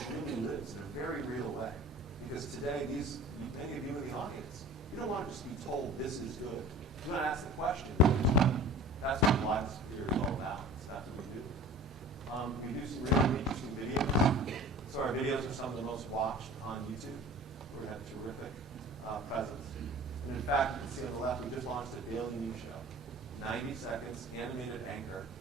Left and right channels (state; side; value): normal; both; correlation 0.42